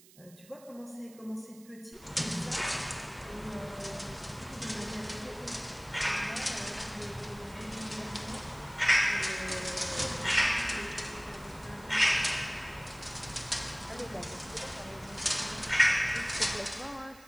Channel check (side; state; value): right; noise; hiss, 23 dB below the sound